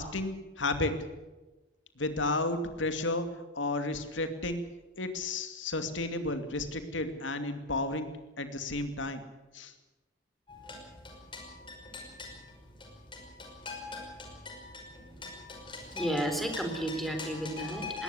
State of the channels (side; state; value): both; normal; correlation 0.19